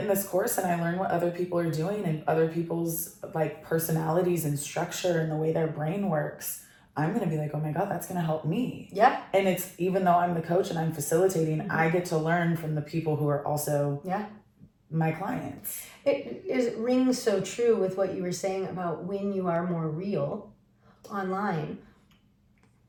in this course and I learn what other people are doing and other people's like personalities and structure and the way their brain works, I'm going to be like, oh my God, that's going to help me. Yeah. And it's, even though I'm the coach and I'm facilitating, I get to learn from the people who are also my clients. It rings so true with what you were saying about when you are more real online.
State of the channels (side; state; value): both; identical; correlation 1.00